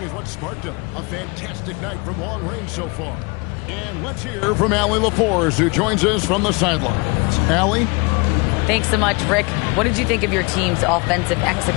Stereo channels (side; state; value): right; quieter; 29.0 dB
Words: is what sparked a fantastic night from long range so far. And let's hear from Allie LaForce, who joins us from the sidelines. Allie? Thanks so much, Rick. What did you think of your team's offensive